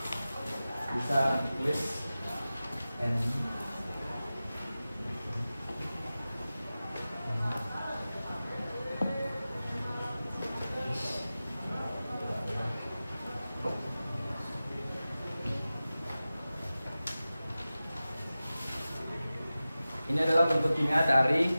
bisa tulis N. Ini adalah bentuk kimia dari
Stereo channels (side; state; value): both; inverted; correlation -0.95